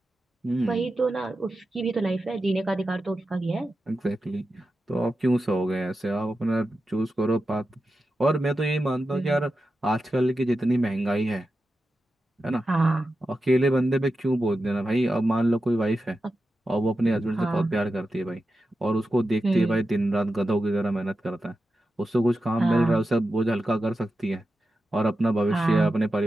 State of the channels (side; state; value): both; normal; correlation 0.91